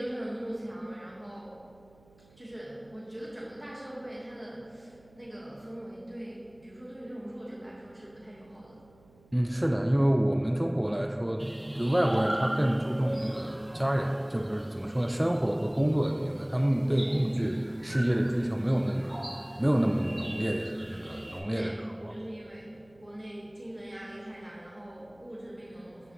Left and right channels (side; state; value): right; noise; hum, 30 dB below the sound